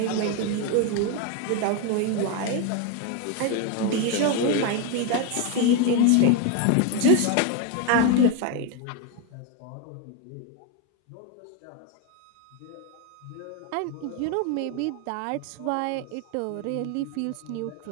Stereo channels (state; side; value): different; both; correlation 0.02